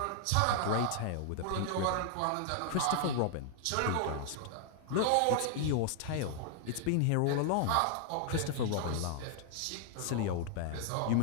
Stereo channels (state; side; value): different; both; correlation 0.00